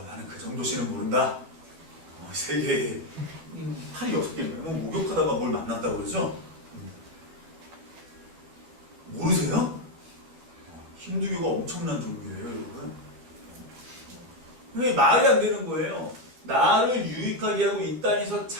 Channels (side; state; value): left; late; 12 ms